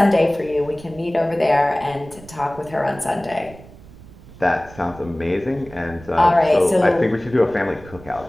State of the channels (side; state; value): right; noise; rumble, 20 dB below the sound